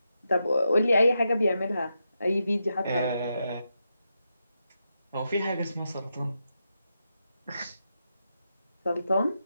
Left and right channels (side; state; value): both; inverted; correlation -0.86